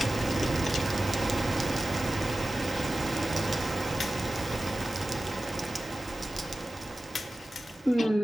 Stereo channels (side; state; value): both; normal; correlation 0.95